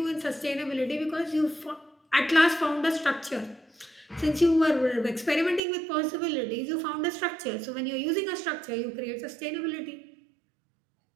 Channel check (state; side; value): drops out; left; at 5.6 s